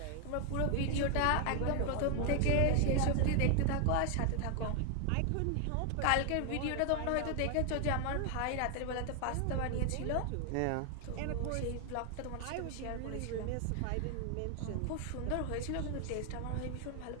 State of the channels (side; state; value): both; different; correlation 0.00